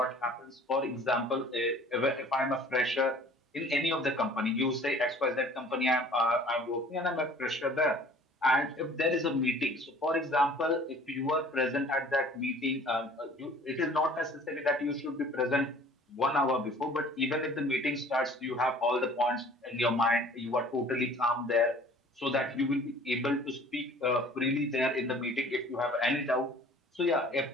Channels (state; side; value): normal; both; correlation 0.50